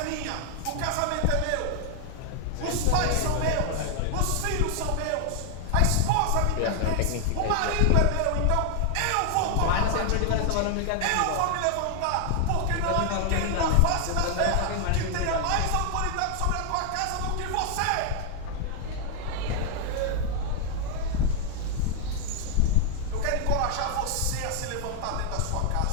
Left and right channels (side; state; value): both; different; correlation 0.00